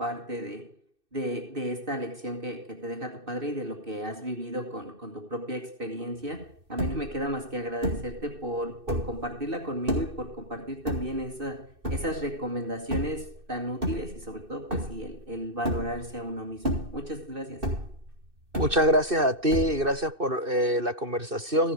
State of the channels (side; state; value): left; late; 2.6 ms